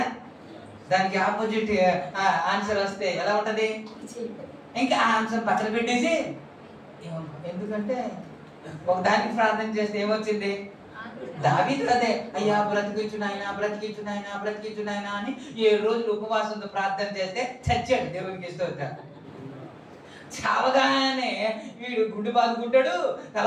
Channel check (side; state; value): both; identical; correlation 1.00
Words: దానికి ఆపోజిట్ ఆన్సర్ వస్తే ఎలా ఉంటది? ఇంకా ఆ ఆన్సర్ పక్కన పెట్టేసి, ఎందుకంటే ఒక దానికి ప్రార్థన చేస్తే ఏమొచ్చింది? దావీదు అదే, అయ్యా బ్రతికించు నాయనా అని 7 రోజులు ఉపవాసంతో ప్రార్థన చేస్తే చచ్చాడు. దేవునికి స్తోత్రం. చావగానే వీడు గుండు బాదుకుంటాడు,